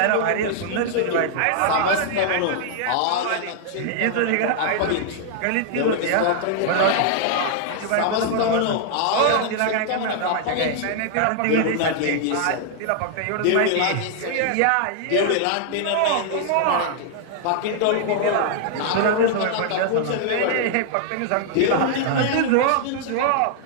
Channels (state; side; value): different; both; correlation -0.01